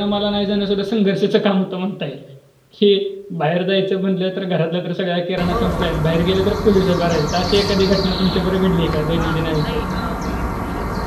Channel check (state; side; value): identical; both; correlation 1.00